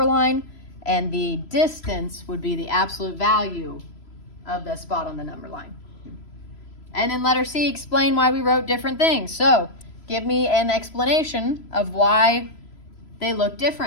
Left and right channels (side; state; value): right; late; 3.0 ms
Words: line, and the distance would be the absolute value of the spot on the number line. And then letter C, explain why we wrote different things. So give me an explanation of why they look